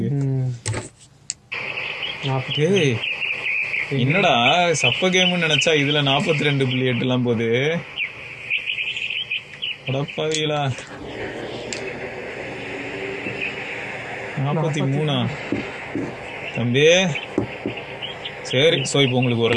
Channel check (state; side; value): identical; both; correlation 1.00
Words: என்னடா சப்ப கேம்னு நினைச்சா இதுல 42.8 எல்லாம் போகுது. அடப்பாவீங்களா, 43 தம்பி. சரி, ஸோ இப்போ உங்களுக்கு